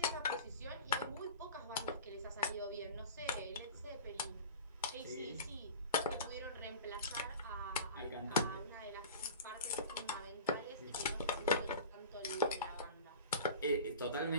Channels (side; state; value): both; inverted; correlation -0.36